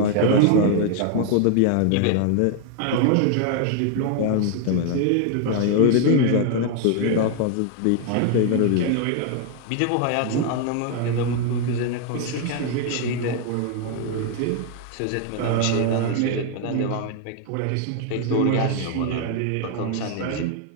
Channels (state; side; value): different; both; correlation 0.00